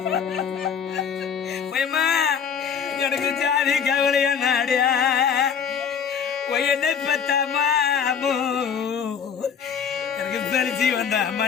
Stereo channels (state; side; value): quieter; right; 7.1 dB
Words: எனக்கு ஜாதி கவலையா நாடியா என்னை பெத்த மாமோ எனக்கு சரிச்சு வந்த